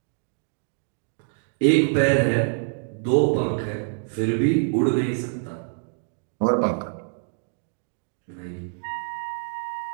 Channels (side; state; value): left; silent; digital silence